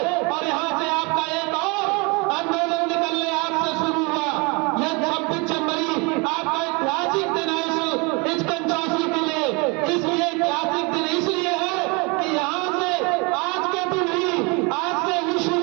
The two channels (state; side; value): quieter; left; 29.3 dB